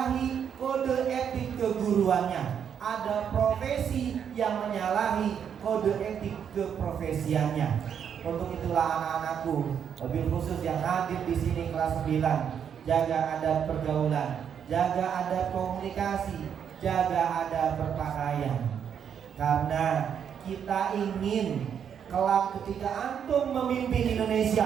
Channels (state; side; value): quieter; left; 8.1 dB